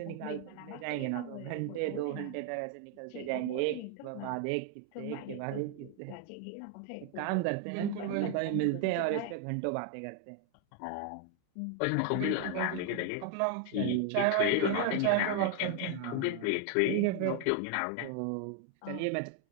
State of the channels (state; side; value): different; both; correlation 0.00